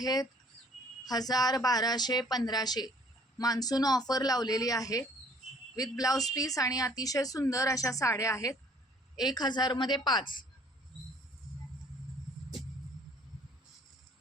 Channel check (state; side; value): normal; both; correlation 0.56